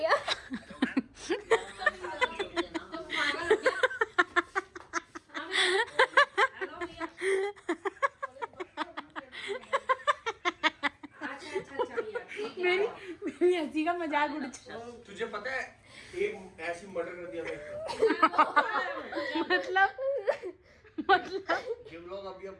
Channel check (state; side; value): identical; both; correlation 1.00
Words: मेरी हंसी का मजाक उड़ चुका। तुझे पता है एक ऐसी मर्डर कर दिया मैं, मतलब ये व्लॉग अभी